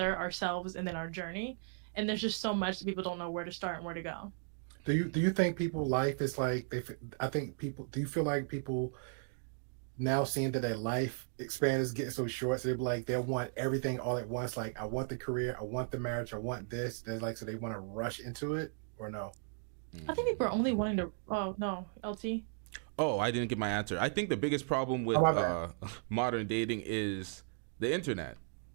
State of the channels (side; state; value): left; silent; digital silence